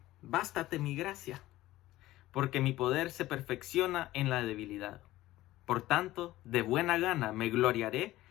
bástate mi gracia, porque mi poder se perfecciona en la debilidad. Por tanto, de buena gana me gloriaré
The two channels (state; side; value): quieter; right; 16.3 dB